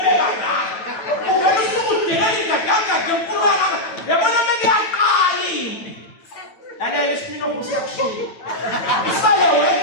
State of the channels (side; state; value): right; late; 9.1 ms